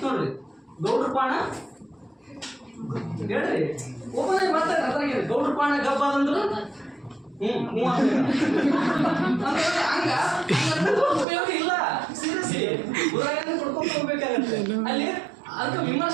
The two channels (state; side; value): drops out; left; at 11.2 s